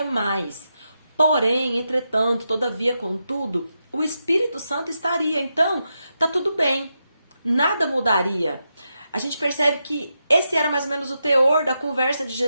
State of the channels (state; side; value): inverted; both; correlation -0.86